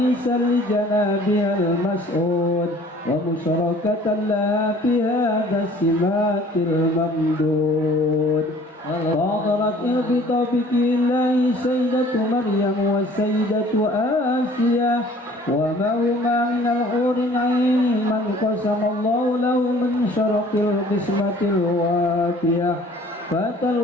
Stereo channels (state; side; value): normal; both; correlation 0.52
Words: لجنابها المسعود ومشاركة لها في هذا السمات الممدود فاضرت بتوفيق الله سيدة مريم والسيدة آسيا وما هما من الحور العين من قسم الله له من شرق القسمة الوافية فأتى